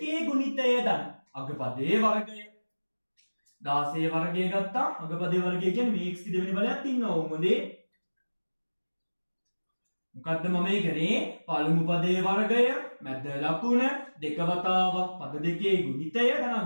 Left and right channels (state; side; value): inverted; both; correlation -1.00